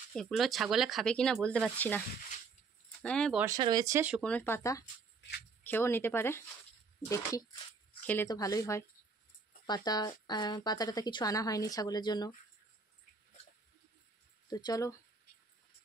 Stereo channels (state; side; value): quieter; left; 4.6 dB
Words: এগুলো ছাগলে খাবে কিনা বলতে পারছি না। হ্যাঁ বর্ষা রয়েছে, শুকনো পাতা খেয়েও নিতে পারে, দেখি খেলে তো ভালোই হয়। পাতাটা কিছু আনা হয়নি ছাগলের জন্য। তো চলো